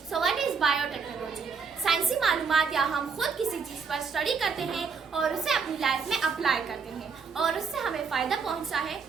So what is biotechnology? साइंसी मालूमात या हम खुद किसी चीज़ पर study करते हैं और उसे अपनी लाइफ में अप्लाई करते हैं और उससे हमें फ़ायदा पहुंचता है,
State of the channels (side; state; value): left; quieter; 5.5 dB